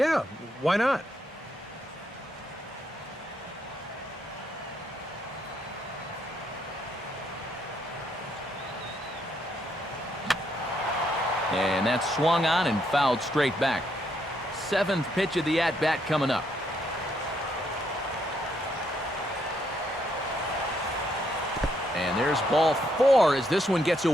why not? And that's swung on and fouled straight back. 7th pitch of the at-bat coming up. And there's ball 4 as this one gets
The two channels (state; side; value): normal; both; correlation 0.74